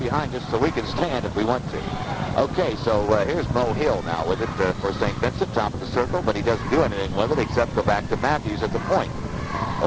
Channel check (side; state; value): both; identical; correlation 1.00